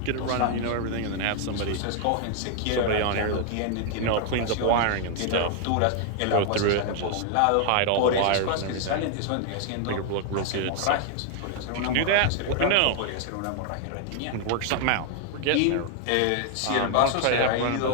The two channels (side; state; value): both; different; correlation 0.00